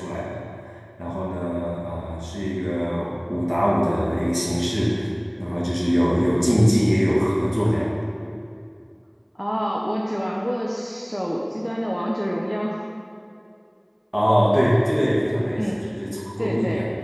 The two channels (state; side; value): identical; both; correlation 1.00